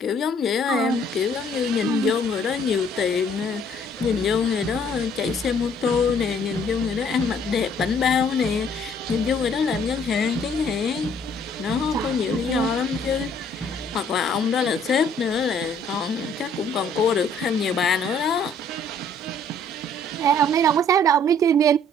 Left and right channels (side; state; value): both; normal; correlation 0.60